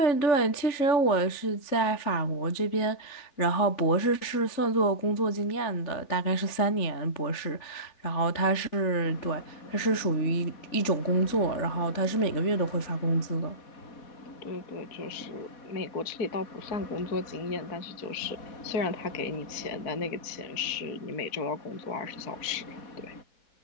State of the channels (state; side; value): late; right; 3.5 ms